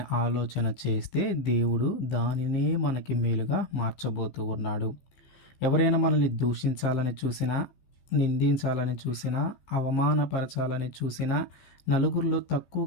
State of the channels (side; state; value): right; late; 15 ms